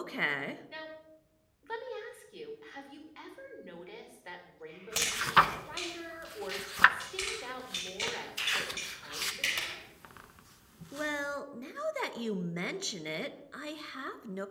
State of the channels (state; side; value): identical; both; correlation 1.00